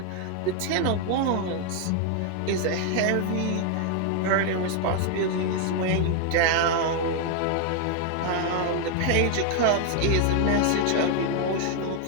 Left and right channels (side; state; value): both; different; correlation 0.00